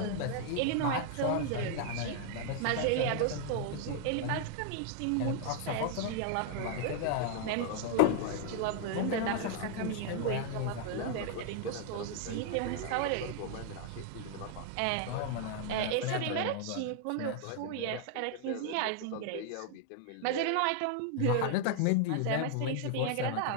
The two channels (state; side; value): different; both; correlation 0.00